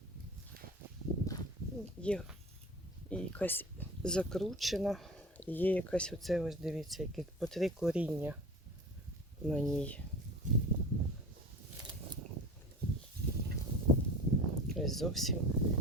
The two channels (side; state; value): both; normal; correlation 0.36